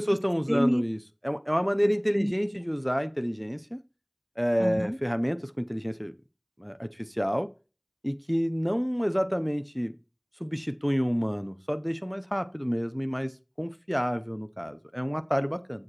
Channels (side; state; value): both; identical; correlation 1.00